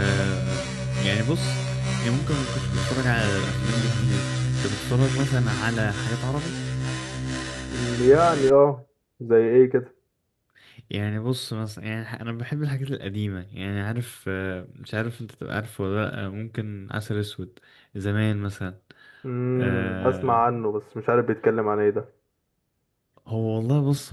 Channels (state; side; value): identical; both; correlation 1.00